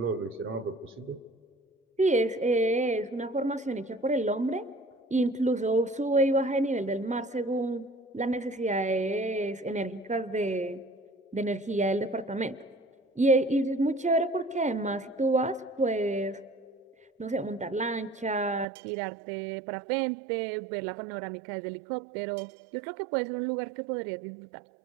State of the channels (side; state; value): left; drops out; at 18.7 s